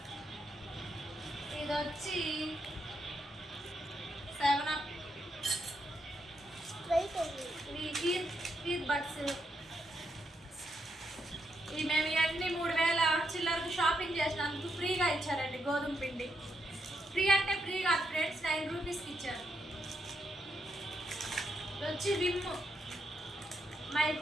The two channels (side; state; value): both; normal; correlation 0.80